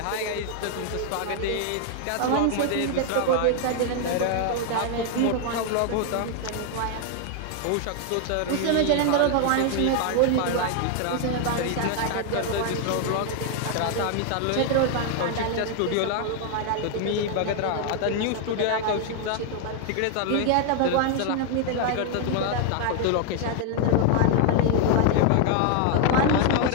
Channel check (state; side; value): different; both; correlation 0.00